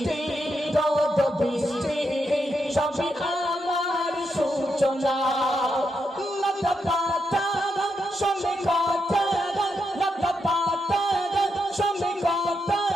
যত বৃষ্টি সবই আমার সূচনা লতা পাতা সবে কথা লতা পাতা সবে কথা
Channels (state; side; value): normal; both; correlation 0.83